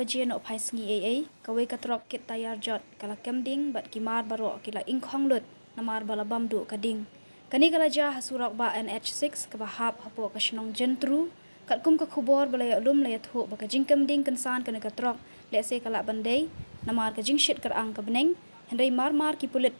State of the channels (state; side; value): inverted; both; correlation -1.00